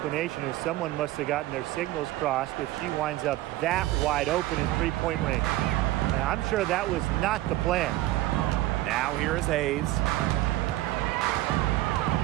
is someone must have gotten their signals crossed if she winds up that wide open in 3-point range. And I'm sure that was not the plan. Now here is Hayes.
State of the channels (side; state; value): left; quieter; 16.5 dB